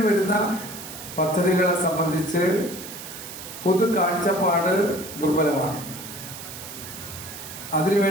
വരുന്ന പദ്ധതികളെ സംബന്ധിച്ച് പൊതു കാഴ്ചപ്പാട് ദുർബലമാണ്. അതിനു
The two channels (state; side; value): noise; right; hiss, 11 dB below the sound